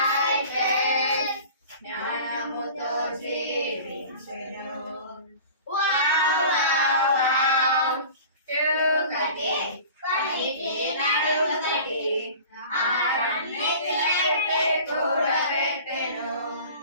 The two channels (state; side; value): inverted; both; correlation -0.41